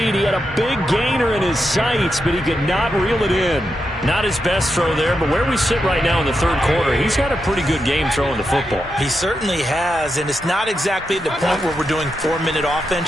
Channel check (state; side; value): normal; both; correlation 0.86